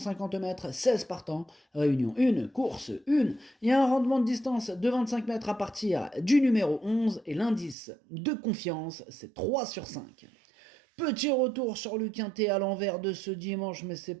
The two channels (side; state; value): left; drops out; at 7.8 s